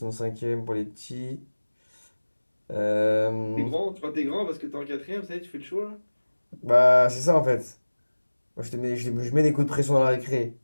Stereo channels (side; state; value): both; inverted; correlation -1.00